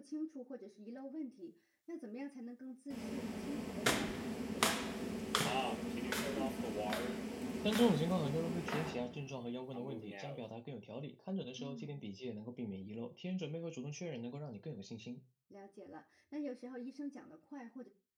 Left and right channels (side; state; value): both; identical; correlation 1.00